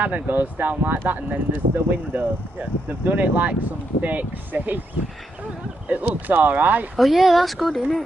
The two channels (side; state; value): both; normal; correlation 0.80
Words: goes down like that and then there's the window. Yeah. They've done it like some fake safe. It looks alright. Oh yeah, that's good, isn't